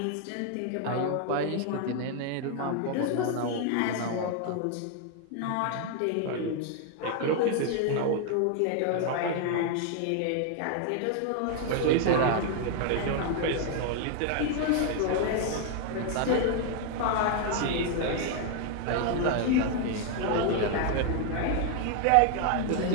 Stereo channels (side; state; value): both; different; correlation 0.00